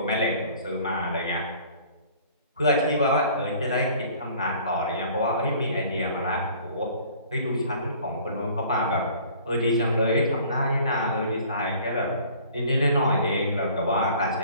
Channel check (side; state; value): both; inverted; correlation -0.51